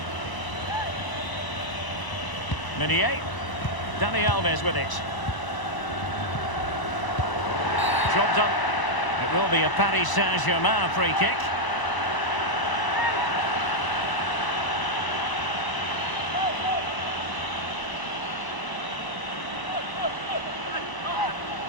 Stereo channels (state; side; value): late; right; 1.0 ms